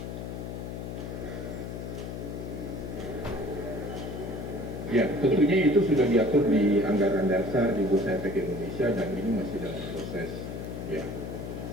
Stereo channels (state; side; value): noise; left; hum, 7 dB below the sound